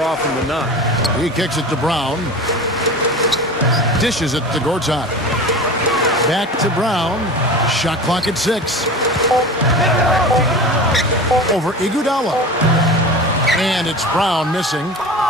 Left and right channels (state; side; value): normal; both; correlation 0.33